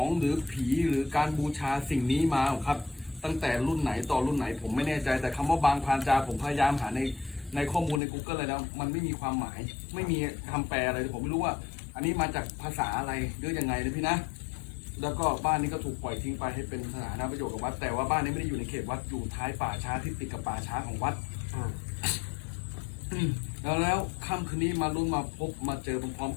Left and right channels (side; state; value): right; drops out; at 8.0 s